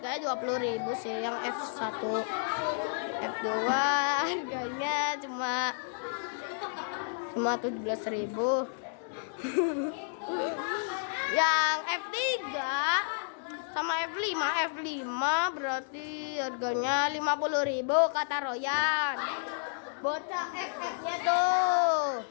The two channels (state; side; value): silent; right; digital silence